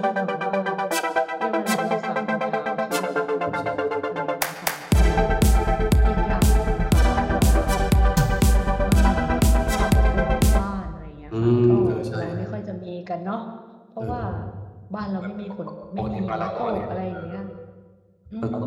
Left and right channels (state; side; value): identical; both; correlation 1.00